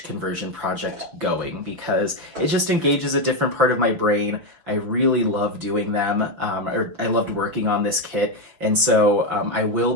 conversion project going, because it just engages a different part of my brain. I really love doing them, or I loved working on this kit, and so I will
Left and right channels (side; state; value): left; late; 6.1 ms